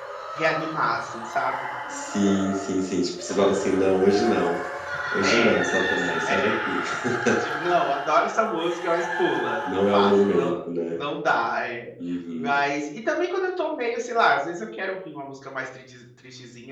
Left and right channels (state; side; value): identical; both; correlation 1.00